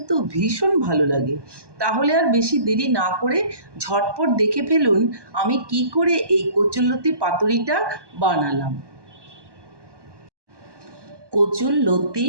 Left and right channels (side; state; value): left; late; 1.2 ms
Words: ভীষণ ভালো লাগে। তাহলে আর বেশি দেরি না করে ঝটপট দেখে ফেলুন আমি কি করে এই কচুরলতি পাতুরিটা বানালাম। কচুরলতি